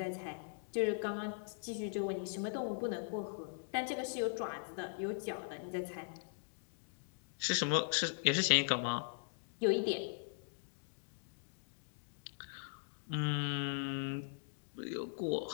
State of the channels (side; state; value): right; silent; digital silence